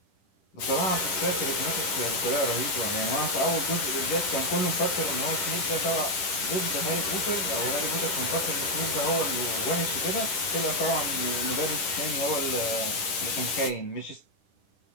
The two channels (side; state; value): right; late; 10 ms